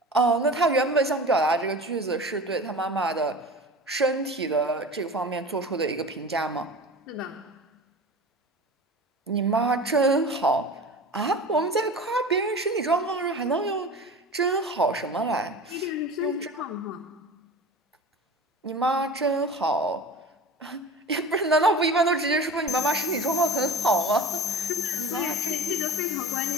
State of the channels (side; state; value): both; normal; correlation 0.35